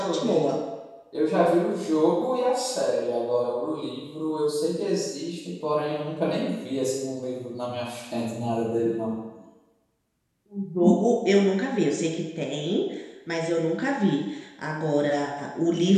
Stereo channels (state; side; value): identical; both; correlation 1.00